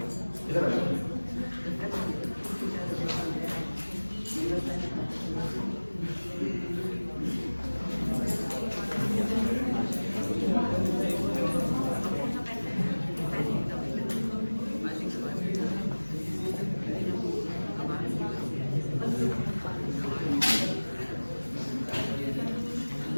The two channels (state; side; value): inverted; both; correlation -1.00